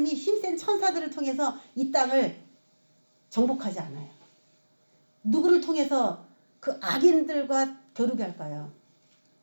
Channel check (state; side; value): inverted; both; correlation -1.00